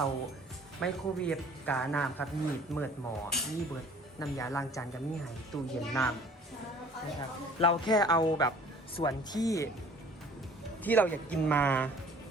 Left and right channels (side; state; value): both; normal; correlation 0.51